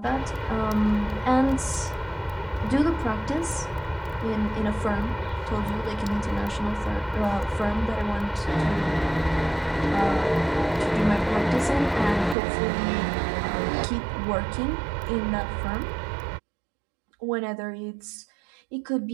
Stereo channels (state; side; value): drops out; left; at 12.4 s